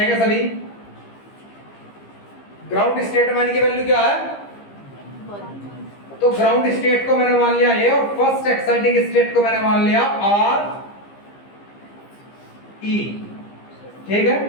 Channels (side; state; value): right; late; 15 ms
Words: सभी। ग्राउंड स्टेट में की वैल्यू क्या है? तो ग्राउंड स्टेट को मैंने मान लिया ए और फर्स्ट एक्साइटिंग स्टेट को मैंने मान लिया आर ई। ठीक है,